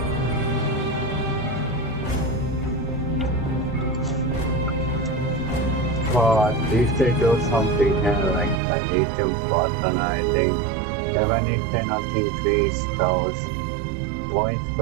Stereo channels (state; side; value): drops out; left; at 8.6 s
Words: But if they do something like the lithium button, I think, even if they not increase those points